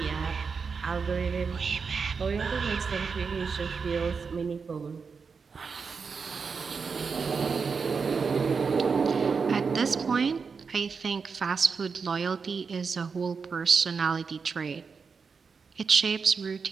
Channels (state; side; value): quieter; left; 5.4 dB